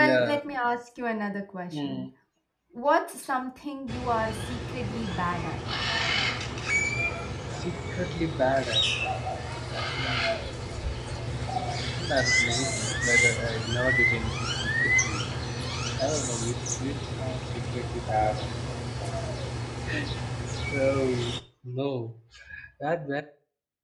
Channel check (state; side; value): identical; both; correlation 1.00